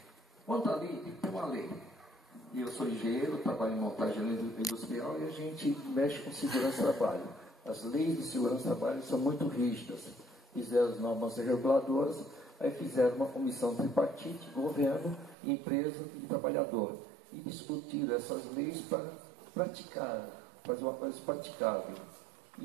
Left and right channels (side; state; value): left; drops out; at 15.4 s